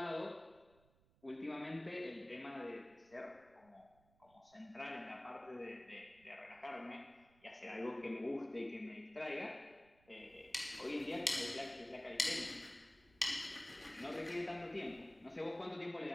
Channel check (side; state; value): right; noise; rumble, 29 dB below the sound